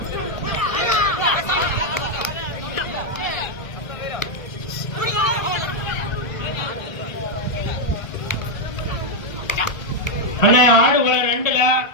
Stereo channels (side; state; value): right; late; 1.1 ms